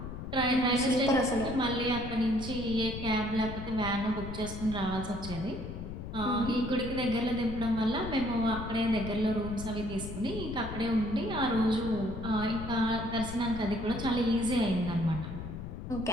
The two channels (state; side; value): noise; left; rumble, 8 dB below the sound